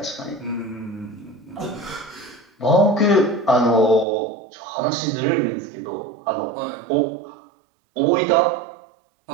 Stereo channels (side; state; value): left; drops out; at 4.0 s